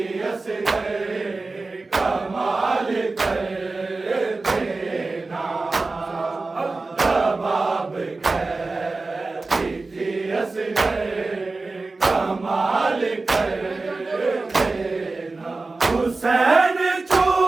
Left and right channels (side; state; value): left; quieter; 3.6 dB